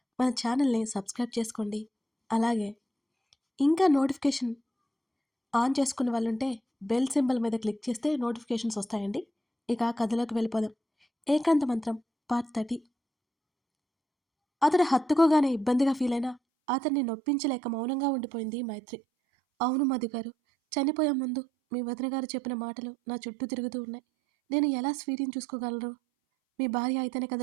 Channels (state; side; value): drops out; left; at 16.4 s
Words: మన ఛానల్ని సబ్స్క్రైబ్ చేసుకోండి. అలాగే ఇంకా నోటిఫికేషన్ ఆన్ చేసుకున్న వాళ్ళుంటే బెల్ సింబల్ మీద క్లిక్ చేస్తే నోటిఫికేషన్స్ వస్తాయండి. ఇక కథలోకి వెళ్ళిపోదాం. ఏకాంత మంత్రం పార్ట్ 30. అతడు హత్తుకోగానే ఇబ్బందిగా ఫీల్ అయినా అతన్ని నొప్పించలేక మౌనంగా ఉండిపోయింది మైత్రి. అవును మధు గారు, చనిపోయే ముందు మీ వదిన గారు చెప్పిన మాటలు నా చుట్టూ తిరుగుతూ ఉన్నాయి. నేను ఎలా స్వీటీని చూసుకోగలరు? మీ భార్య అయితేనే